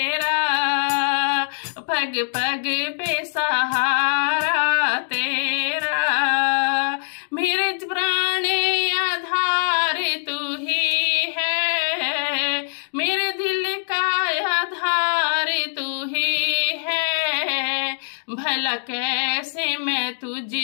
पग पग पे सहारा तेरा। मेरे प्राण आधार तू ही है, मेरे दिल का आधार तू ही है। भला कैसे मैं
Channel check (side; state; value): right; silent; digital silence